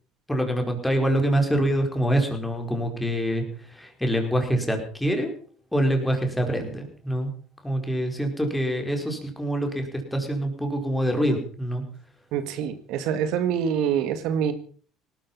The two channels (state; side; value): normal; both; correlation 0.74